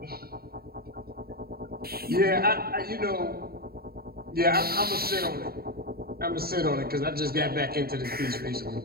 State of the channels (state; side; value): late; left; 0.45 ms